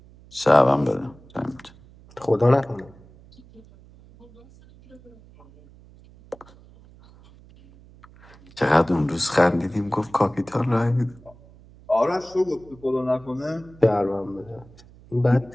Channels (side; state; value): right; noise; hum, 24 dB below the sound